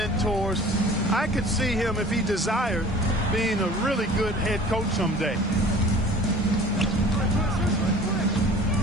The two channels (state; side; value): normal; both; correlation 0.45